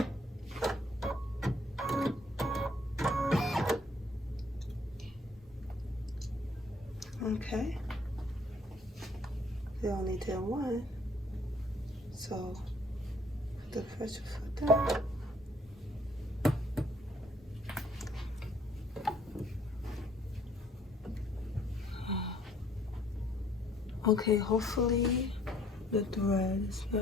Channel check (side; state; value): both; normal; correlation 0.62